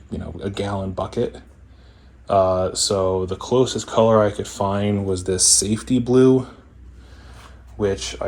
gallon bucket. So the closest color I could find was this safety blue, which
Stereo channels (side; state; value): both; identical; correlation 1.00